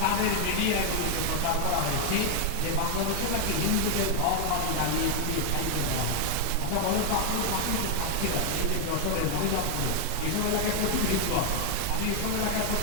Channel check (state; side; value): different; both; correlation 0.00